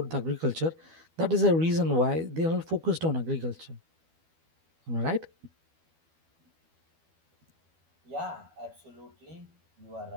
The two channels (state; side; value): late; left; 12 ms